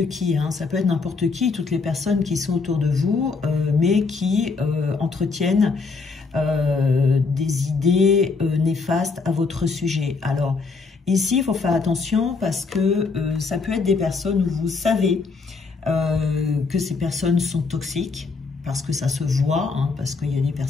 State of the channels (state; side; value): quieter; right; 4.4 dB